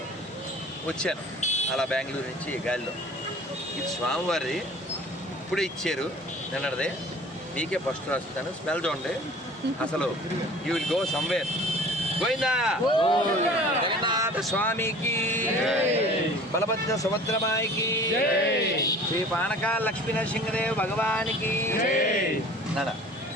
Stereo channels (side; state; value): both; normal; correlation 0.46